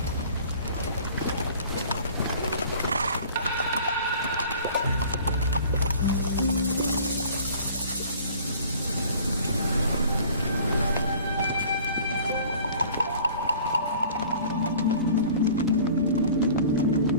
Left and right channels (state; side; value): inverted; both; correlation -0.48